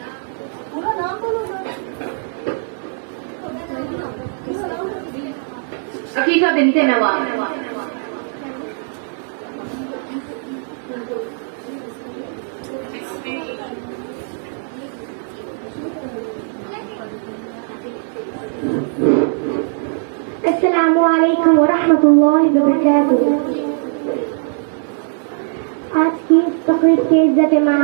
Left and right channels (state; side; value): silent; left; 65 dB below the other